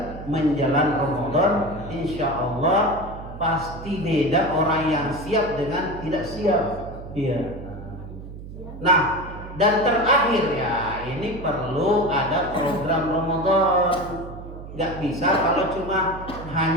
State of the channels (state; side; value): noise; right; hum, 12 dB below the sound